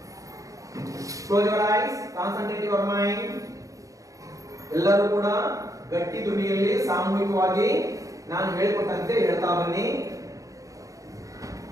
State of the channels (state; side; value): late; left; 0.16 ms